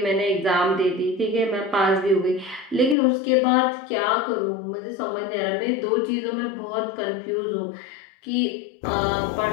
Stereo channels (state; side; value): drops out; right; at 3.0 s